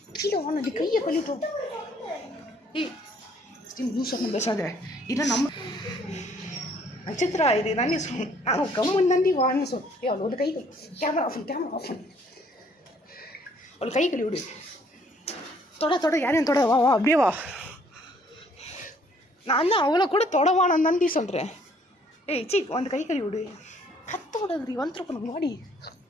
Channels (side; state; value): both; normal; correlation 0.62